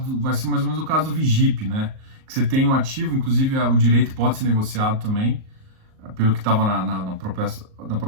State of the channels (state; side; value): late; left; 38 ms